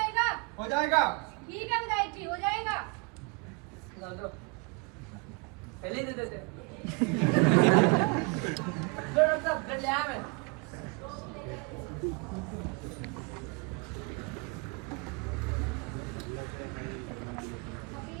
हो जाएगा। ठीक है विधायक जी, हो जाएगा। लो पहले ही दे देते। लो डॉक्टर साहब ब्लड ले आया मैं। अभी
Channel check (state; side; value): quieter; left; 29.6 dB